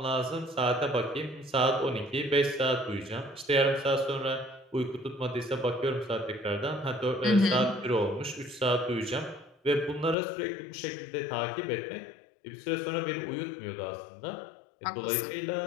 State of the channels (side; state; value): right; drops out; at 10.2 s